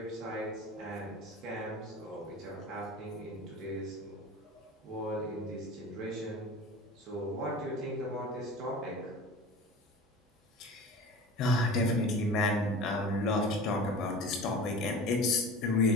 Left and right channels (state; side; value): normal; both; correlation 0.36